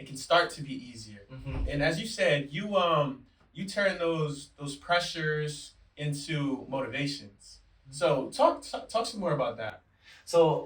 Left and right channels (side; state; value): both; identical; correlation 1.00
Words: start to be easier. And as you said, you turn those pressures into motivations. So talk some more about that. So